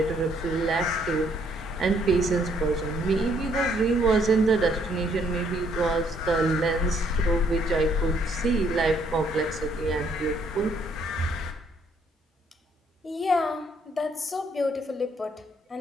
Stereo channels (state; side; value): normal; both; correlation 0.67